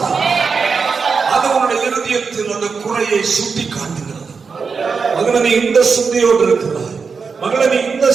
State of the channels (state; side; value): quieter; left; 5.3 dB